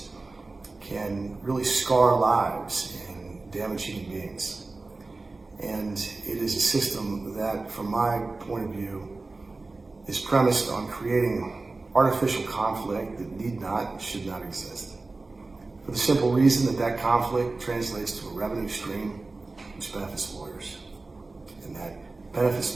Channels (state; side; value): quieter; left; 3.5 dB